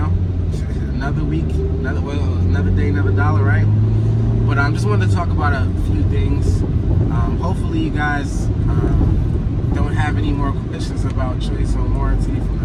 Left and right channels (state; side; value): identical; both; correlation 1.00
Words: another week, another day, another dollar, right? But I just wanted to talk about a few things. Hopefully you guys don't have any more questions about choice on warranty from the